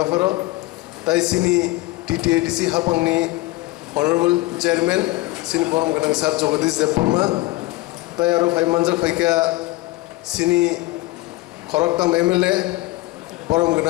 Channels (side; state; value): right; quieter; 19.5 dB